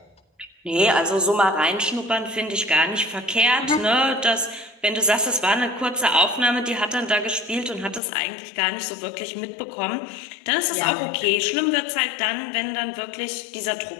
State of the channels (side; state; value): right; drops out; at 8.0 s